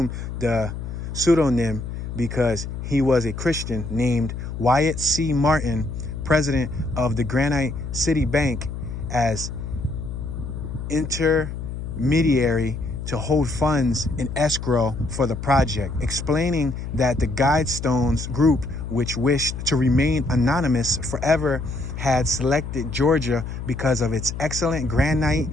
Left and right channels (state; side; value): noise; left; hum, 7 dB below the sound